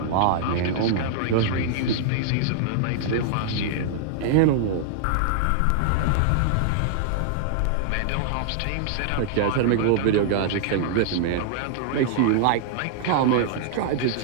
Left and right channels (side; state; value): both; different; correlation -0.01